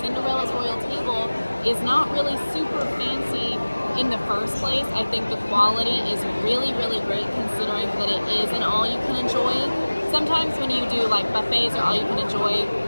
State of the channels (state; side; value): inverted; both; correlation -1.00